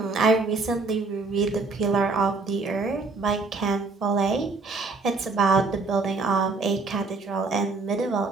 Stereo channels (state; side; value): quieter; left; 3.8 dB